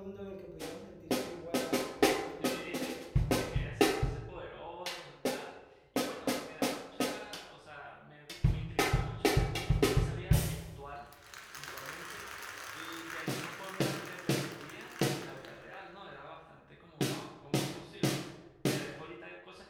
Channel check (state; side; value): identical; both; correlation 1.00